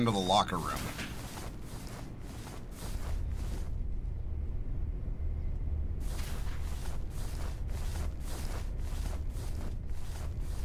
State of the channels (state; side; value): identical; both; correlation 1.00